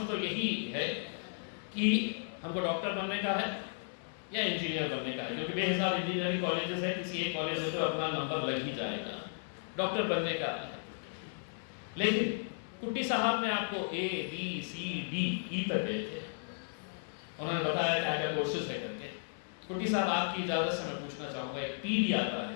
तो यही है कि हमको डॉक्टर बनने का है या इंजीनियर बनने का है, क्योंकि बेहिसाब इंजीनियरिंग कॉलेजेस है, किसी एक कॉलेज में तो अपना नंबर लग ही जाएगा। डॉक्टर बनने का है, लेकिन कुट्टी साहब ने आपको A, B, C, D, E तक गए थे, उन्होंने बताया क्या क्या कोर्सेज है करके। कुट्टी साहब आपकी इजाज़त से मैं पूछना चाहूँगा, एक P भी आता है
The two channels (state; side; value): silent; right; 55 dB below the other